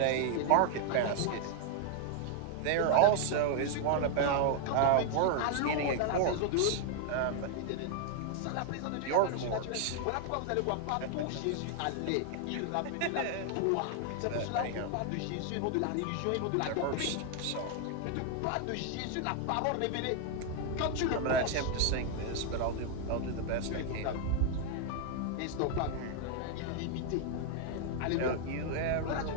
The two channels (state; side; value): different; both; correlation 0.00